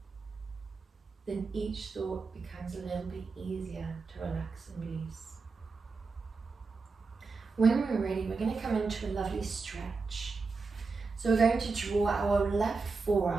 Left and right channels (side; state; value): left; quieter; 4.4 dB